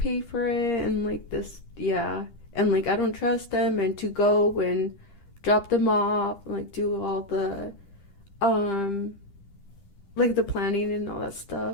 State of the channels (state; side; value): late; right; 10 ms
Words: for it and like this, and like I don't trust them, and to go and drop them off, like do all the like the planning and all that